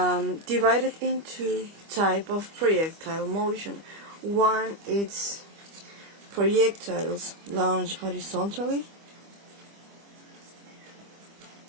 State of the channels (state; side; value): late; left; 25 ms